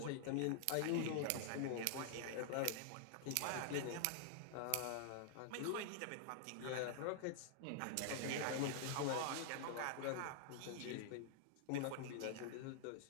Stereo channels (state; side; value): different; both; correlation -0.01